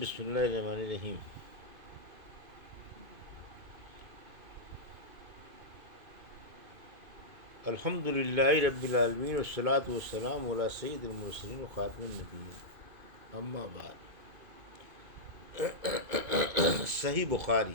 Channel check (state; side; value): late; left; 2.5 ms